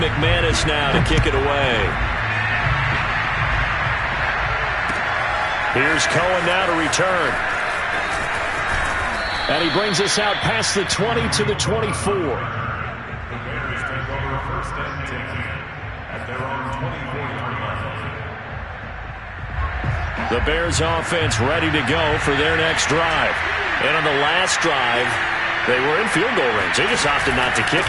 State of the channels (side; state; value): both; identical; correlation 1.00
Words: now to kick it away. Here's Cohen now to return. And he brings us out past the 20 to the 24. The Bears offense ready to go for their next drive. And on the last drive, they were in field goal range. They just opted not to kick